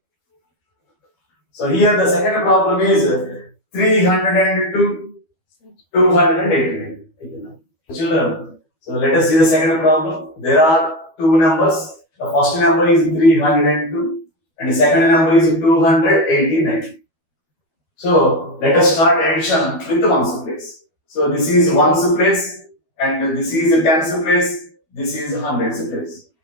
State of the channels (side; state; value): right; late; 12 ms